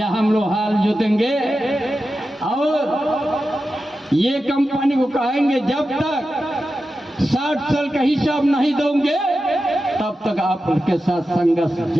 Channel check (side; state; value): both; normal; correlation 0.92